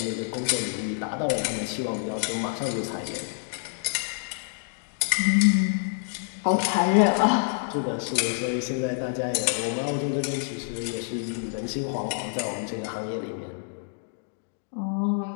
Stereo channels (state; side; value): silent; right; digital silence